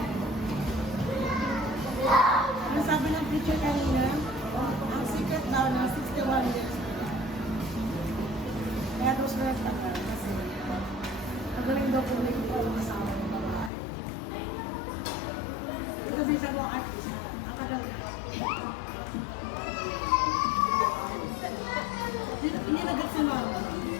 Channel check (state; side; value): drops out; right; at 13.7 s